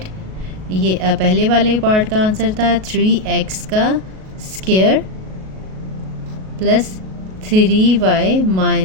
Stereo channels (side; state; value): left; late; 37 ms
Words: ये पहले वाले पार्ट का आंसर था 3x का स्क्वायर प्लस 3y